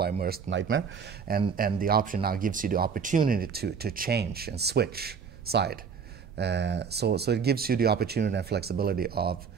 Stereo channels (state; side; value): quieter; left; 6.3 dB